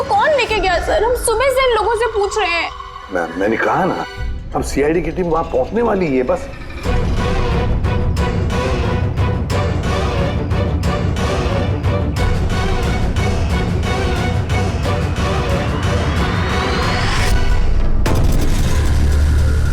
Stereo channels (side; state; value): both; identical; correlation 1.00